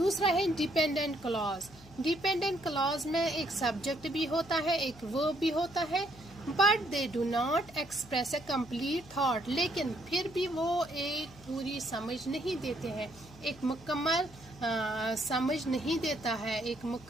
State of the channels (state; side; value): noise; left; hum, 22 dB below the sound